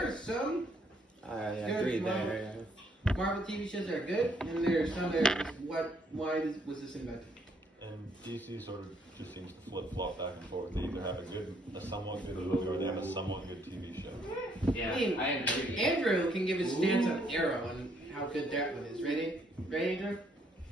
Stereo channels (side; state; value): both; normal; correlation 0.69